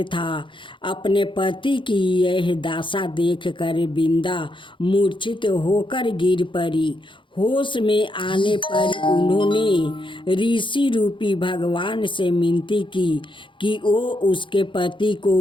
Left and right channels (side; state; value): right; late; 0.24 ms